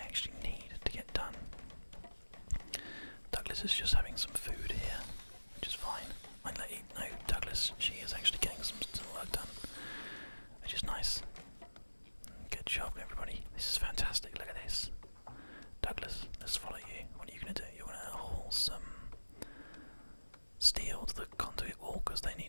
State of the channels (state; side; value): inverted; both; correlation -1.00